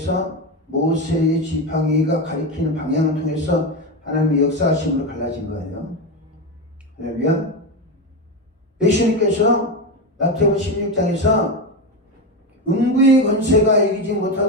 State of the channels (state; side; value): normal; both; correlation 0.15